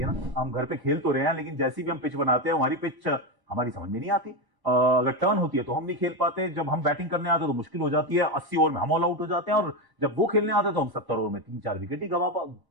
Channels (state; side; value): late; left; 1.1 ms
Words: है ना, हम घर पे खेल तो रहे हैं, लेकिन जैसी भी हम पिच बनाते हैं हमारी पिच हमारी समझ में नहीं आती। अगर टर्न होती है तो हम नहीं खेल पाते, जब हम बैटिंग करने आते हैं तो मुश्किल हो जाती है, 80 ओवर में हम ऑल आउट हो जाते हैं, और जब वो खेलने आते हैं तो हम 70 ओवर में 3-4 विकेट ही